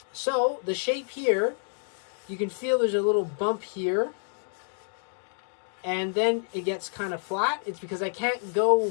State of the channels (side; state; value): right; silent; 59 dB below the other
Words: So the shape here, you can feel there's a little bump here, and then it gets kind of flat. It's because I can't